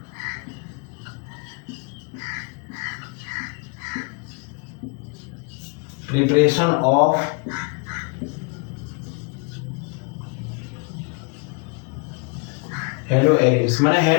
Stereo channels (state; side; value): quieter; right; 33.8 dB